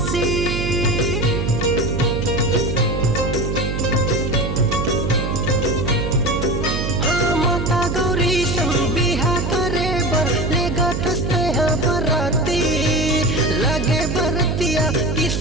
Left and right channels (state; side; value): noise; right; hum, 1 dB below the sound